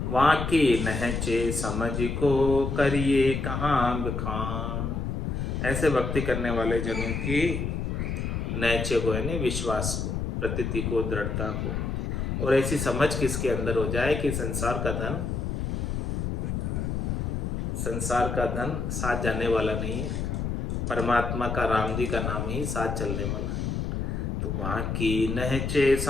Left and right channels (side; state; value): left; noise; rumble, 2 dB below the sound